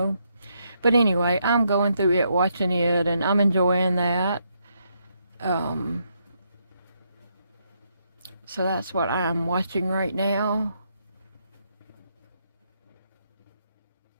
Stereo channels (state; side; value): inverted; both; correlation -0.77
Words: But anyway, I'm going through it, watching it, and I'm enjoying that. So that's what I'm watching right now.